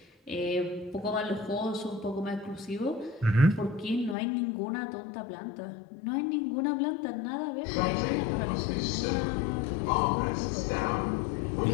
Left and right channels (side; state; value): right; drops out; at 4.2 s